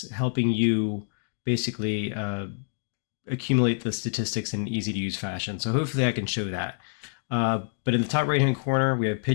helping you basically accumulate the statistics in an easy-to-use fashion. So hopefully I can show that. But in the top right-hand corner, we have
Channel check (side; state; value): right; silent; digital silence